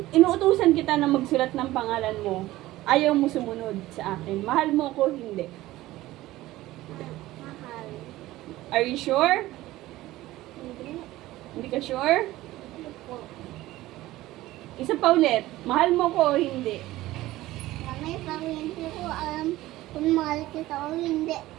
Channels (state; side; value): quieter; left; 16.8 dB